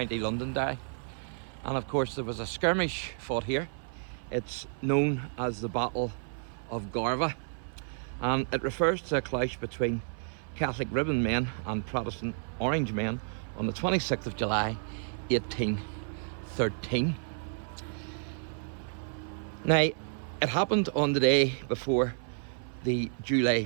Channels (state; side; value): silent; left; 57 dB below the other